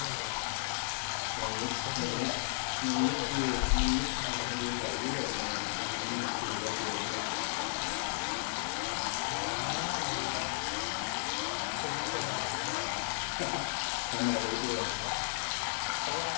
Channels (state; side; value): silent; right; 55 dB below the other